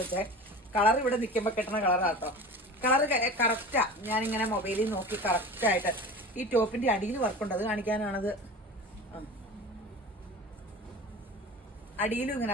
വെച്ചേ. കളർ ഇവിടെ നിൽക്കുമ്പോൾ കിട്ടുന്ന കളറാട്ടോ. Colour correct. ഞാനിങ്ങനെ മൊബൈലിൽ നോക്കി കറക്റ്റായിട്ട്. ഈ ടോപ്പിന്റെ അടിയിൽ വർക്കുണ്ട്, അത് കാണിക്കാനാണത്. അടിയിലും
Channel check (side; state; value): both; normal; correlation 0.35